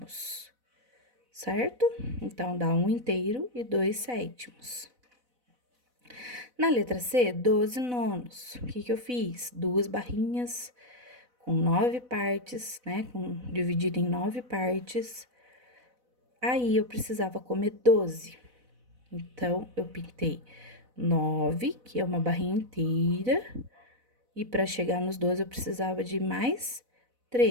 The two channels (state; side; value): late; left; 4.0 ms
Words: certo? Então, dá 1 inteiro e 2 sétimos. Na letra C, 12 nonos. O que eu fiz? 2 barrinhas com 9 partes, né? Dividido em 9 partes. Aí, eu precisava comer 12. Então, eu pintei 9, que é uma barrinha inteira, E para chegar nos 12, eu precisava de mais